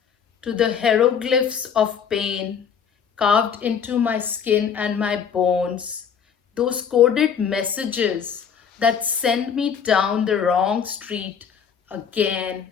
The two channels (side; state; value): right; quieter; 7.3 dB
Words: to the hieroglyphs of pain carved into my skin and my bones, those coded messages that send me down the wrong street again